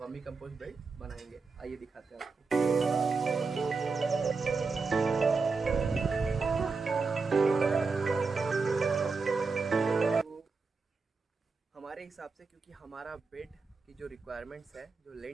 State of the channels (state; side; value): quieter; left; 4.4 dB